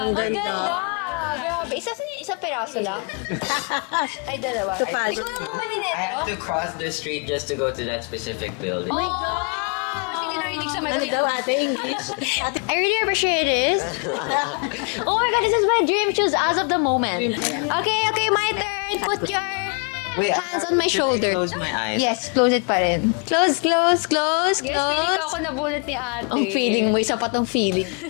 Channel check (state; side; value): quieter; right; 38.1 dB